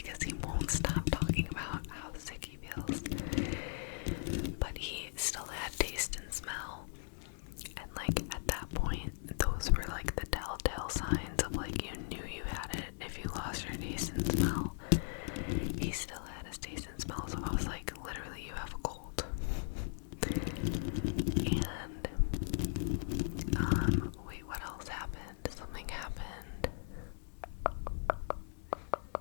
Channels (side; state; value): right; silent; digital silence